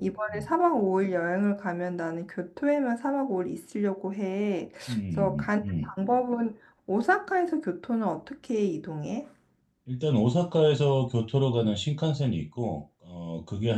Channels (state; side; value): identical; both; correlation 1.00